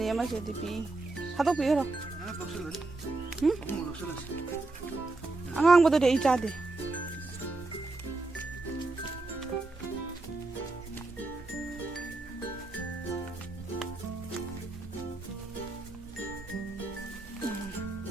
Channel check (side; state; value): left; quieter; 3.3 dB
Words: ꯑꯃꯁꯤꯗꯤ ꯄꯤ ꯊꯥꯗꯣꯛꯄꯤꯈ꯭ꯔꯣ ꯑꯉꯥꯡꯕꯗꯨꯗꯤ ꯑꯩ ꯆꯥꯗꯦ